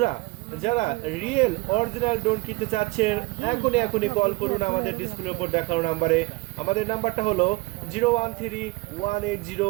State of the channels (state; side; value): quieter; left; 23.4 dB